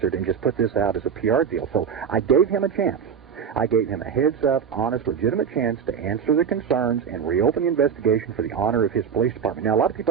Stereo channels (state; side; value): quieter; left; 7.2 dB